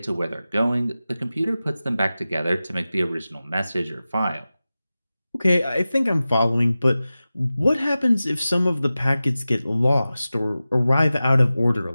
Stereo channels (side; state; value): both; inverted; correlation -0.95